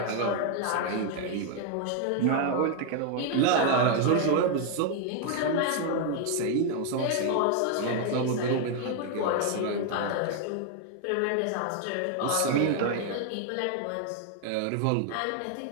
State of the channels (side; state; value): both; different; correlation 0.00